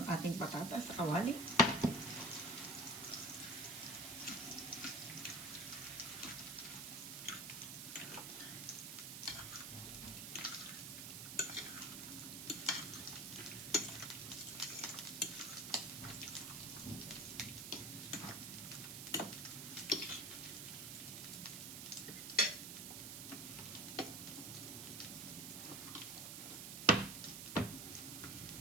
ating patatas sa kawali.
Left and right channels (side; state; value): right; noise; hiss, 7 dB below the sound